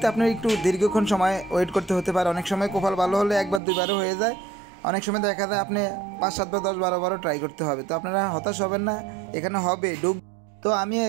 আপনার একটু দীর্ঘক্ষণ সময় ওয়েট করতে হতে পারে। অনেক সময় কপাল ভালো হলে একবার দুইবারও হয়ে যায়, অনেক সময় দেখা যায় আপনি 5-7 বার 10-12 বারও ট্রাই করতে হবে। তো আপনারা হতাশ হবেন না, এখানে হবে ঢুক। তো আমি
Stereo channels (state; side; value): drops out; left; at 3.6 s